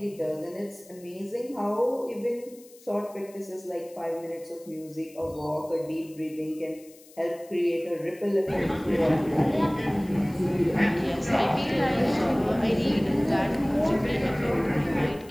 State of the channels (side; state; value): left; noise; hiss, 24 dB below the sound